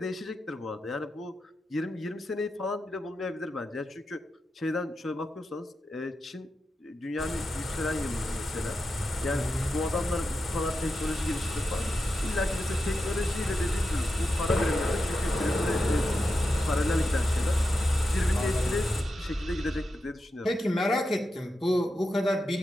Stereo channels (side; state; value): both; normal; correlation 0.89